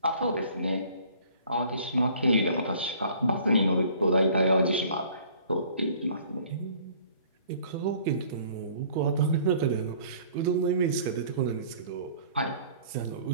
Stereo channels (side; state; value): both; inverted; correlation -0.53